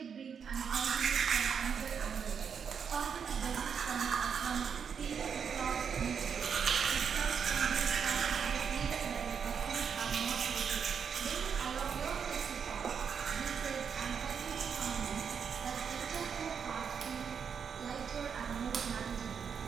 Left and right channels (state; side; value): quieter; left; 6.9 dB